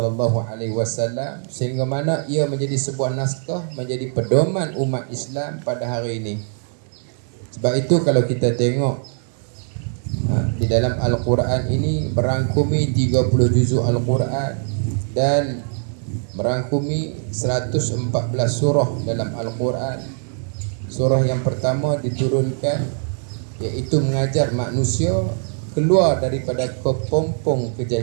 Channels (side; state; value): left; silent; 58 dB below the other